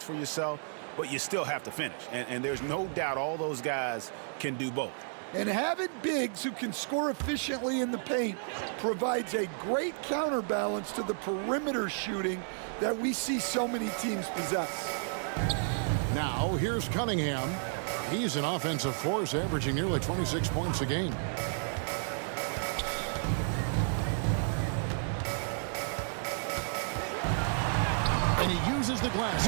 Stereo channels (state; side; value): silent; left; digital silence